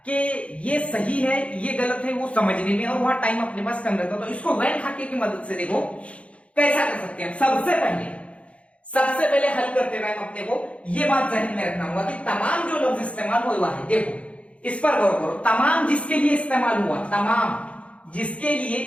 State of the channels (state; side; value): late; right; 0.062 ms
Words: कि ये सही है ये गलत है वो समझने में, और वहां टाइम अपने पास कम रहता। तो इसको वैन खाके की मदद से देखो कैसा कर सकते हैं। सबसे पहले हल करते हुए अपने को ये बात जहन में रखना होगा कि तमाम जो लफ्ज इस्तेमाल हुआ है, देखो इस पर गौर करो, तमाम जिसके लिए इस्तेमाल हुआ, तमाम जिसके लिए